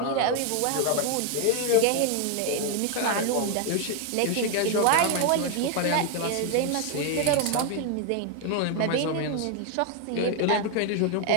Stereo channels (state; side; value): different; both; correlation 0.01